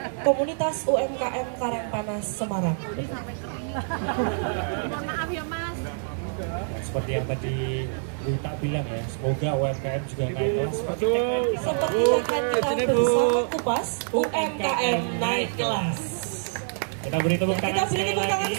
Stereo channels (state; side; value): silent; left; 61 dB below the other